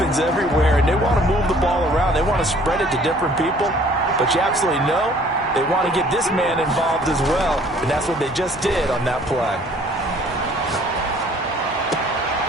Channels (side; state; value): both; normal; correlation 0.56